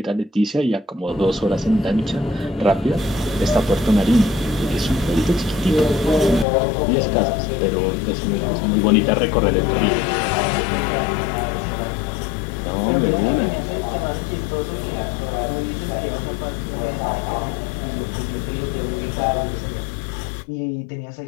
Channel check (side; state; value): right; drops out; at 6.5 s